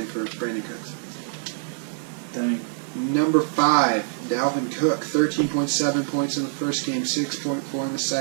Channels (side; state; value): left; silent; digital silence